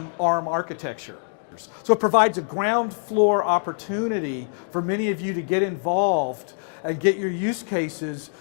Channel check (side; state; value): right; silent; digital silence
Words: ARM architecture. So it provides a ground floor opportunity for many of you to get involved and get your use cases